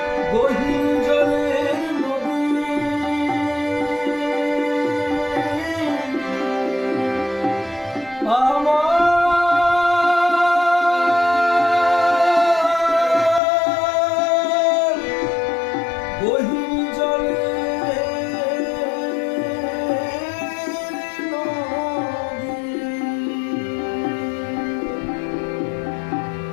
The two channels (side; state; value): right; drops out; at 13.4 s